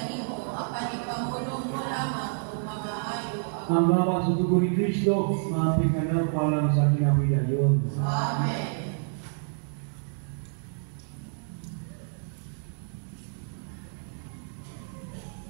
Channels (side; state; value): left; silent; digital silence